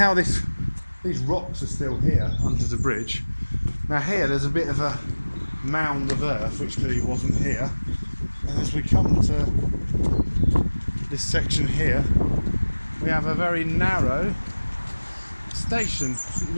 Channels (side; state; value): both; inverted; correlation -1.00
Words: these rocks are still here under the bridge. Now here there's a bit of a mound of earth which clearly wasn't here, and as we come to this section here, we have a very narrow station. It